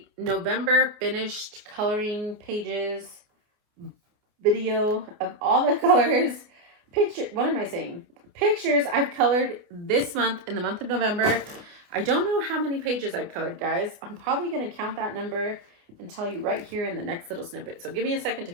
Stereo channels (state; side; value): late; left; 28 ms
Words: November finished coloring pages video of all the colors. Pictures I've colored this month in the month of November. I don't know how many pages I've colored, guys. I'm probably going to count that number and tell you right here in the next little snippet. So give me a second to